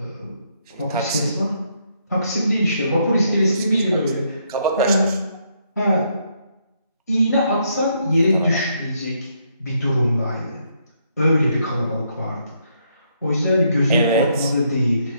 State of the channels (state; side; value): inverted; both; correlation -0.74